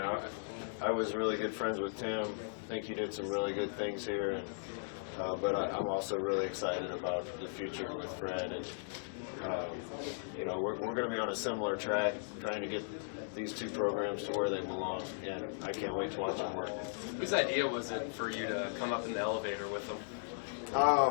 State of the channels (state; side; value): silent; right; digital silence